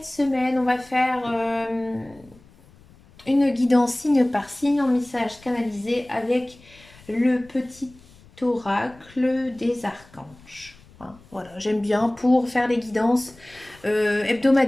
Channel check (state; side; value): noise; left; rumble, 25 dB below the sound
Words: semaine, on va faire une guidance signe par signe en message canalisé avec le petit oracle des archanges. Hein, voilà, j'aime bien pour faire les guidances